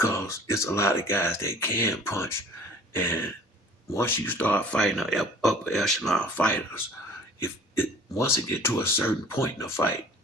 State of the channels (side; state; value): both; normal; correlation 0.49